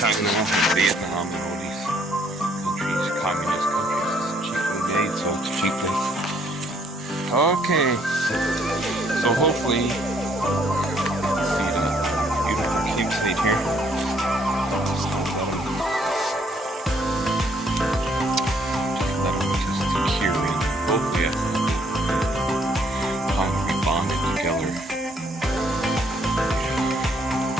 and Vietnam and all these countries, communist countries. It's cheaply made, so it's cheaply. Okay, so hopefully, see the beautiful cube stage here. Let them just secure in. Hopefully, bonded together.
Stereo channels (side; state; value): both; normal; correlation 0.66